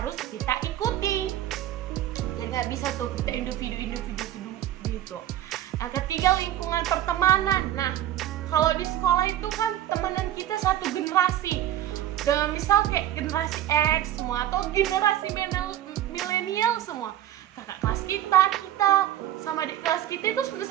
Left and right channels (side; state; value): left; quieter; 12.4 dB